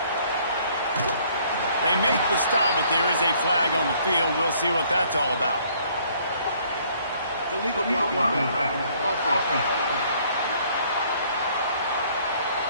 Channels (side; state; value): both; inverted; correlation -0.61